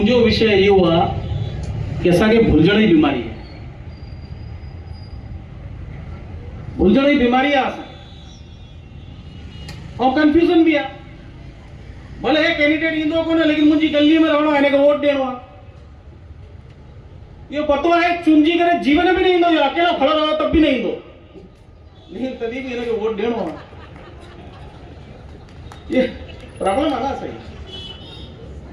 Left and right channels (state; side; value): identical; both; correlation 1.00